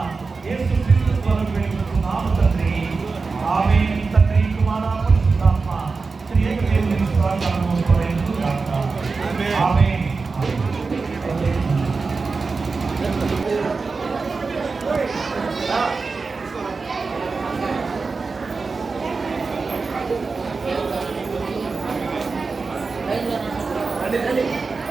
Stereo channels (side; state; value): left; quieter; 4.3 dB